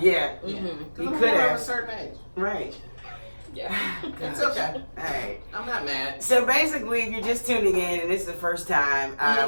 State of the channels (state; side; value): inverted; both; correlation -1.00